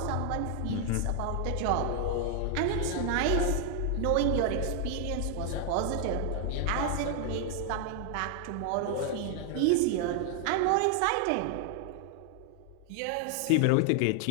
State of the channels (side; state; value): both; different; correlation 0.00